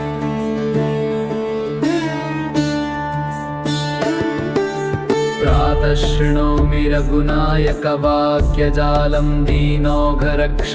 प्रातः शृणोमि रघुनायकवाक्यजालं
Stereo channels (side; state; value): both; identical; correlation 1.00